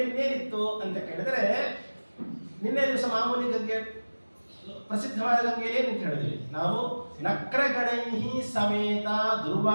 ಇನ್ನೇನಿತ್ತು ಅಂತ ಕೇಳಿದ್ರೆ, ನಿನ್ನೆ ದಿವಸ ಮಾಮೂಲಿ ಗಂಗೆ ಪ್ರಸಿದ್ಧವಾದ ಗಂಗೆಯಲ್ಲಿ ಏನಂತ ಹೇಳಿದ್ವಿ ನಾವು, ನಕ್ರಗಣೈಹಿ ಸಮೇತ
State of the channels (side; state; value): both; inverted; correlation -1.00